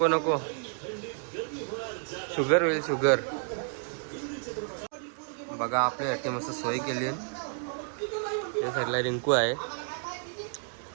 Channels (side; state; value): left; silent; 57 dB below the other